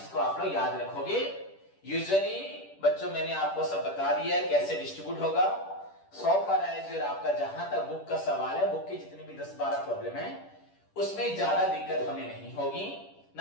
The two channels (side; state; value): right; late; 10 ms